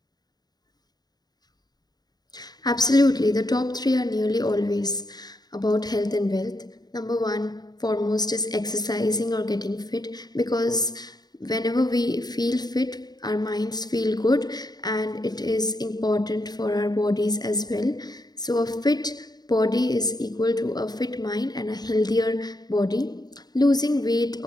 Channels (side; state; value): right; late; 0.20 ms